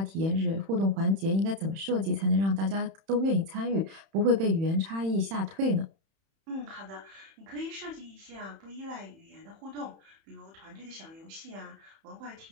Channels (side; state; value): left; late; 31 ms